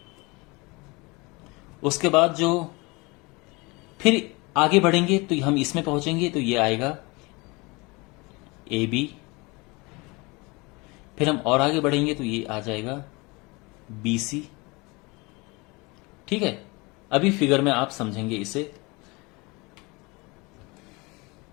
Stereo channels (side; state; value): right; quieter; 25.9 dB